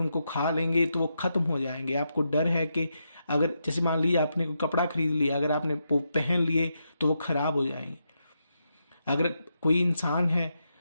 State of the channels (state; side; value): inverted; both; correlation -0.84